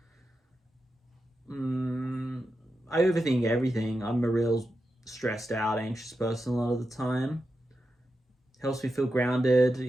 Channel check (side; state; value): both; normal; correlation 0.89